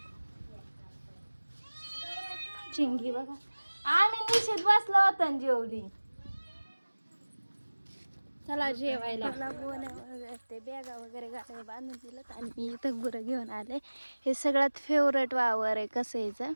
चिंगी बघा, आम्ही निश्चित बसलो होतो न जेवली. चला जेवायला. ते बॅगा वगैरे गाड्या बांधून दिलं आणि मी इथं गुरं घेऊन आले. हे सगळ्यात फेवरेट वावर आहे कसायचं,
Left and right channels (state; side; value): inverted; both; correlation -1.00